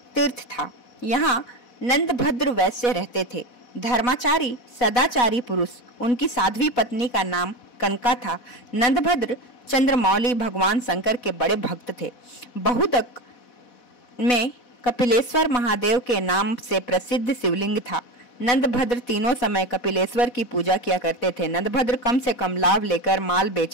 तीर्थ था। यहाँ नंदभद्र वैश्य रहते थे। धर्माचारी सदाचारी पुरुष। उनकी साध्वी पत्नी का नाम कनका था। नंदभद्र चंद्रमौली भगवान शंकर के बड़े भक्त थे। बहुदक में कपिलेश्वर महादेव के नाम से प्रसिद्ध शिवलिंग था। नंदभद्र तीनों समय कपिलेश्वर की पूजा किया करते थे। नंदभद्र कम से कम लाभ लेकर माल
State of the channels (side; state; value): right; late; 4.1 ms